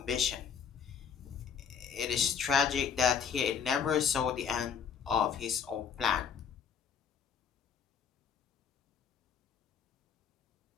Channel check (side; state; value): right; quieter; 7.0 dB